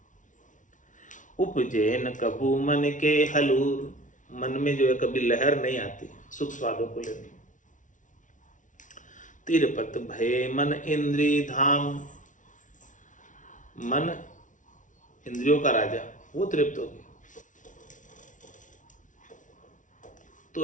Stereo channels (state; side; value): late; right; 0.37 ms